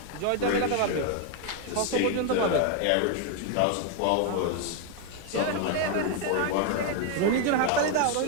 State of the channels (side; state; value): both; different; correlation 0.01